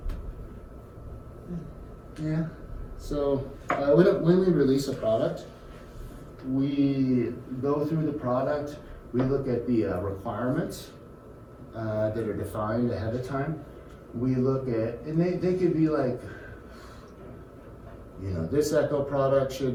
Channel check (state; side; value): identical; both; correlation 1.00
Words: Yeah. So when we release a product, we go through the product, we look at the requirements that are defined ahead of time. we look at, and they could be like, you know, this Echo product